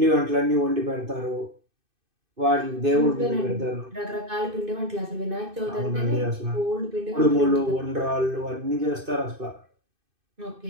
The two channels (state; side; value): late; left; 2.5 ms